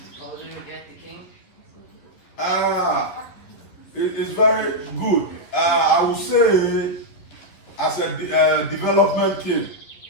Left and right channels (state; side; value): late; right; 11 ms